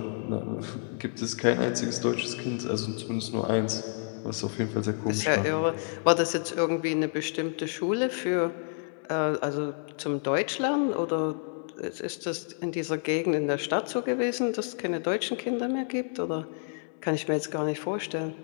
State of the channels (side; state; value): right; silent; digital silence